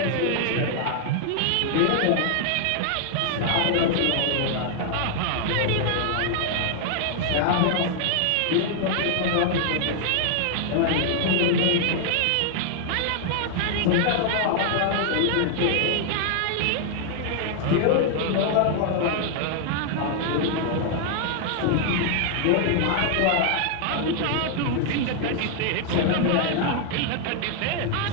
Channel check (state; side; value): different; both; correlation 0.00